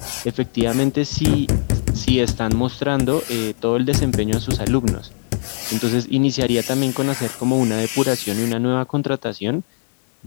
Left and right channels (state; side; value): silent; right; 62 dB below the other